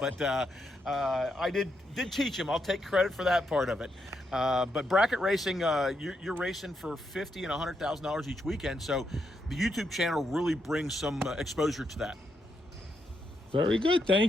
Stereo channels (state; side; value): normal; both; correlation 0.80